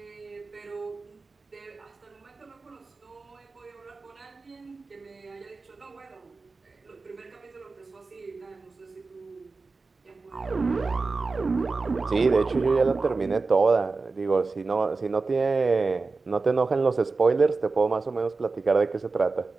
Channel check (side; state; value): left; quieter; 4.0 dB